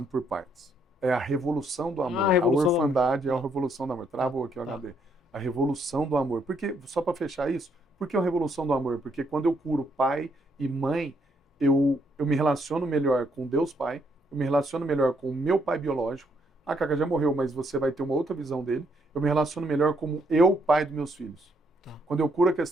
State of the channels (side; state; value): both; normal; correlation 0.72